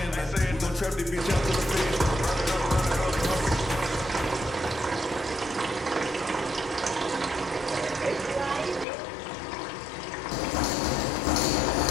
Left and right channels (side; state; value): right; drops out; at 8.8 s